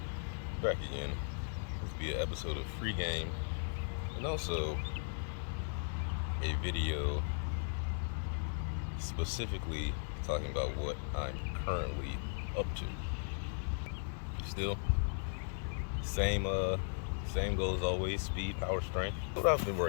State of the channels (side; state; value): right; silent; digital silence